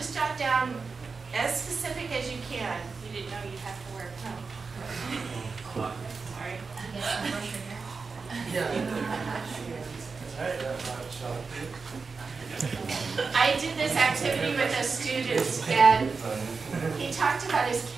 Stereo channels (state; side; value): quieter; left; 4.7 dB